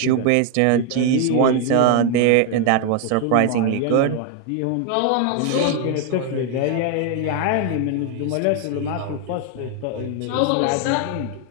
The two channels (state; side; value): different; both; correlation 0.01